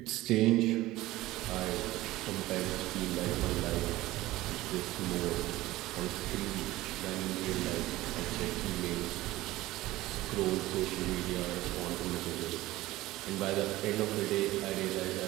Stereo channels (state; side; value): quieter; left; 17.4 dB